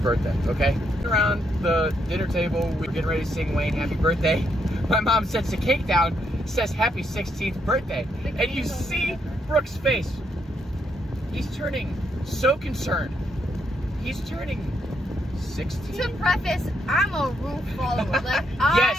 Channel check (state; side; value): normal; both; correlation 0.77